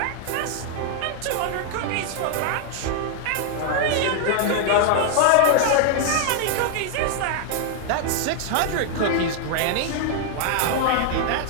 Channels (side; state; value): both; different; correlation 0.00